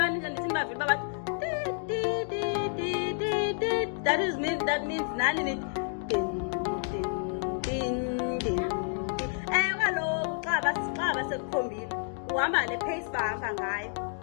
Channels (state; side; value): silent; right; 58 dB below the other